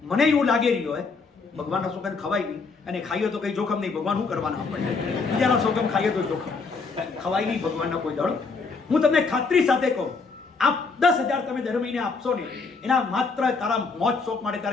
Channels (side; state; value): right; quieter; 4.5 dB